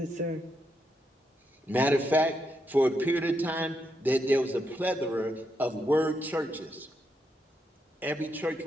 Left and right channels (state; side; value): normal; both; correlation 0.81